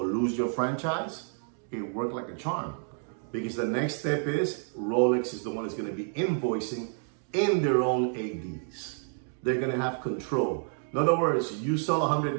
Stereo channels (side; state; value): left; silent; 58 dB below the other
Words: lose your franchise, it worked like a charm. Because the next step is Rolex is the one that's going to be invoicing in their own ADs. They're going to have control. In other words, you sell $100,000,